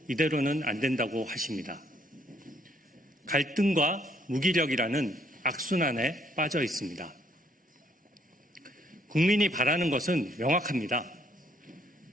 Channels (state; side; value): normal; both; correlation 0.68